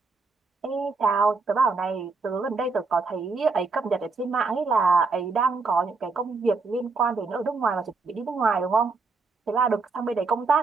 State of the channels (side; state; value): left; quieter; 4.1 dB